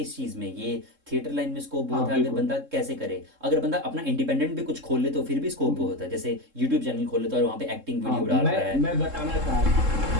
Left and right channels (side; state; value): left; late; 3.7 ms